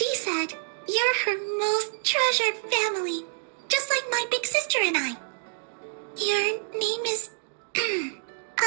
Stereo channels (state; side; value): silent; left; digital silence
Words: said you're her most treasured family, just like my big sister and I. Your name is...